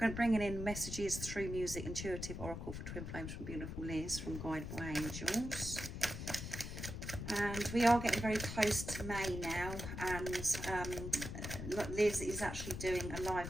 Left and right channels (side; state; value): left; noise; rumble, 6 dB below the sound